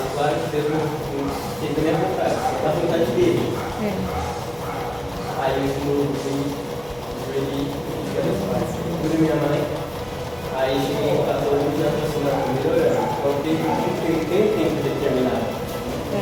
claro que Deus não fez a minha vontade, a vontade dele. Aí eu fui ali, minha mãe. Aí cheguei em casa hoje e já estou melhorando. Então tem um tempo determinado.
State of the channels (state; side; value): noise; right; hum, 23 dB below the sound